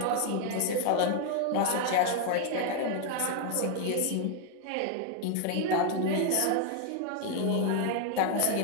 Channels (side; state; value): both; different; correlation 0.00